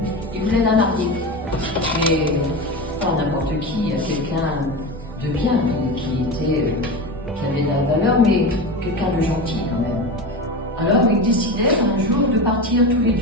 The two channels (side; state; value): both; normal; correlation 0.24